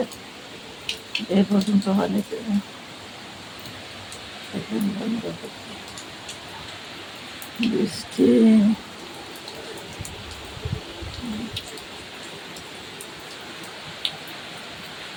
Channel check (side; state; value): both; identical; correlation 1.00